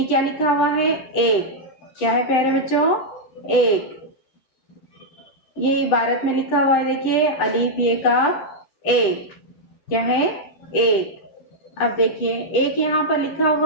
क्या लिखा हुआ है? एक। क्या है प्यारे बच्चों? एक। ये इबारत में लिखा हुआ है, देखिए, अलीफ ये का एक। क्या है? एक। अब देखिए, एक यहाँ पर लिखा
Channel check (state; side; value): late; right; 9.9 ms